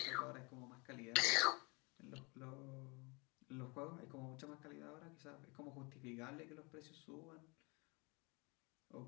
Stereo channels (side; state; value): right; quieter; 29.0 dB